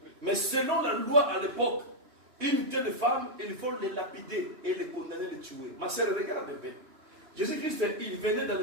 Mais selon la loi à l'époque, une telle femme, il faut les lapider et les condamner, les tuer. Ma sœur, regarde un peu. Jésus-Christ, il venait dans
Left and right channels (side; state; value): left; late; 2.9 ms